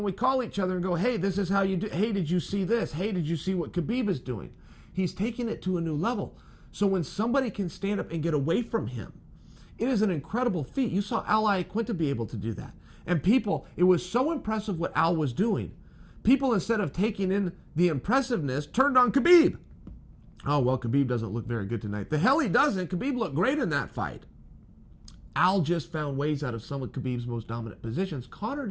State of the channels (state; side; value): identical; both; correlation 1.00